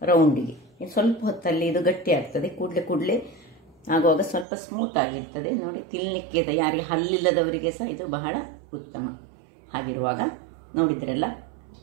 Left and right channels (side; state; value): left; drops out; at 4.5 s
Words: ರೌಂಡಿಗೆ. ಇನ್ನು ಸ್ವಲ್ಪ ಹೊತ್ತಲ್ಲಿ ಇದು ಗಟ್ಟಿ ಆಗ್ತದೆ, ಕೂಡಲೇ ಆಗುವಾಗ ಸ್ವಲ್ಪ ಸ್ಮೂತ್ ಆಗಿರ್ತದೆ. ನೋಡಿ ತಿನ್ನಲಿಕ್ಕೆ ಯಾರಿಗೆ ಹಲ್ಲಿಲ್ಲದವರಿಗೆ ಸಹ ಇದು ಬಹಳ ಉತ್ತಮ. ಹಾಗಿರುವಾಗ ನೋಡಿದ್ರಲ್ಲ,